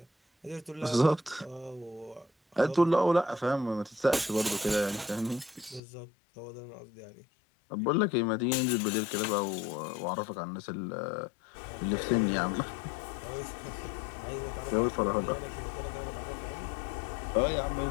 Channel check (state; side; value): drops out; right; at 5.8 s